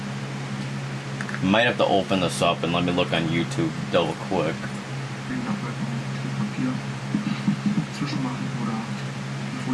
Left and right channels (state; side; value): identical; both; correlation 1.00